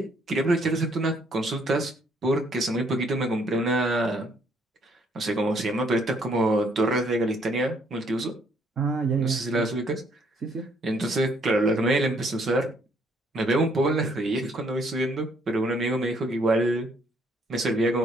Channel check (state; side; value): normal; both; correlation 0.67